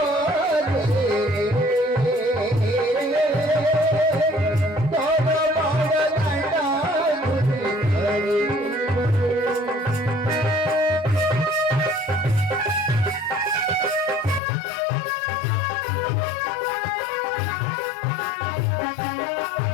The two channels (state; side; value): drops out; right; at 14.4 s